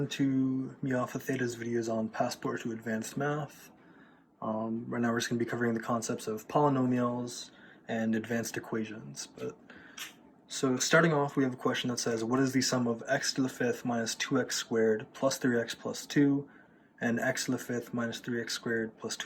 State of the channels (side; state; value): both; identical; correlation 1.00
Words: to me off of Theta's videos on Passport to Advanced Math. Right now we're just going to be covering the concepts of polynomials and advanced equations. So starting off, we have a question that says, what is the sum of x to the fifth minus 2x squared plus 3x plus 2 and x to the fifth minus 3x squared plus